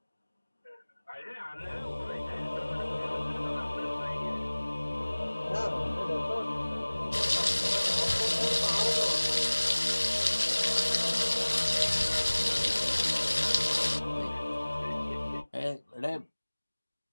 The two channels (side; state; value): both; inverted; correlation -1.00